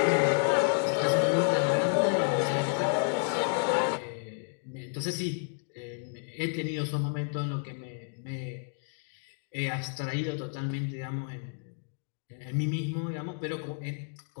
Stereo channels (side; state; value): right; silent; 57 dB below the other